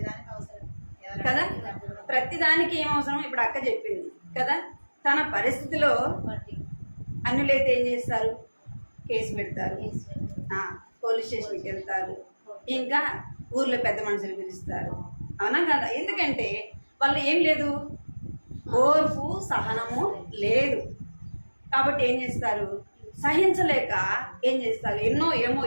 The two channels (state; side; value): inverted; both; correlation -1.00